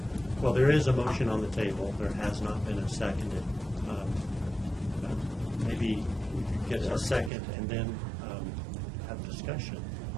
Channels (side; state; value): left; drops out; at 7.3 s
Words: Well, there is a motion on the table. There has not been a seconded. Maybe we could get a second and then have discussion